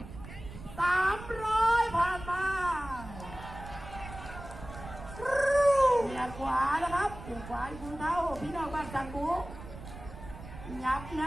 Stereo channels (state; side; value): noise; right; rumble, 13 dB below the sound